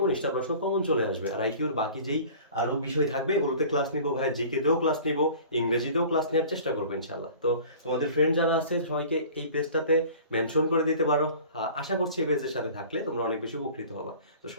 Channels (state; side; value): inverted; both; correlation -0.45